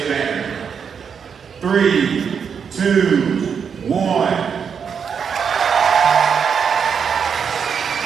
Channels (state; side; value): quieter; left; 6.8 dB